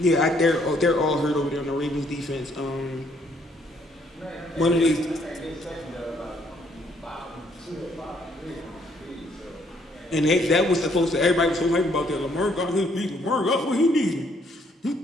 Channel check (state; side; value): normal; both; correlation 0.68